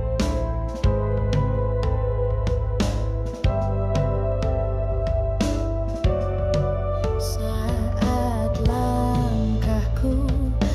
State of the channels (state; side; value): identical; both; correlation 1.00